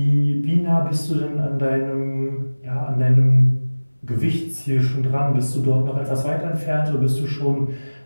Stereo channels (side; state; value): both; inverted; correlation -1.00